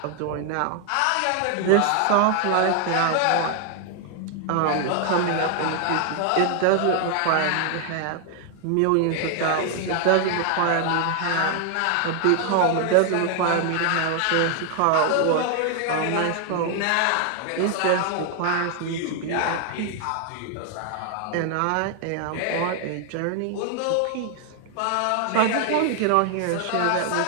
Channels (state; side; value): different; both; correlation 0.00